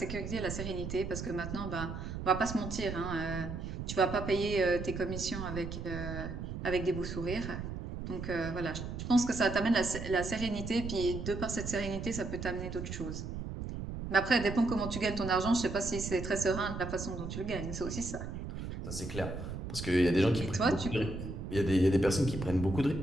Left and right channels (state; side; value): noise; right; rumble, 6 dB below the sound